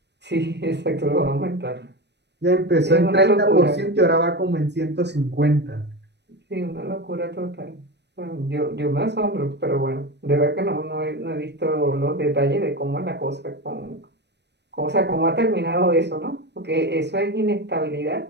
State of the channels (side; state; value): left; late; 0.50 ms